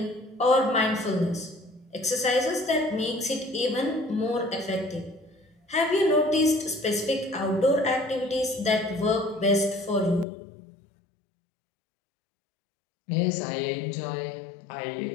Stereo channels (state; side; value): drops out; right; at 10.2 s